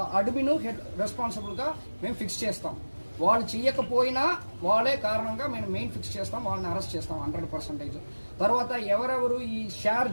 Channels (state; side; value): inverted; both; correlation -1.00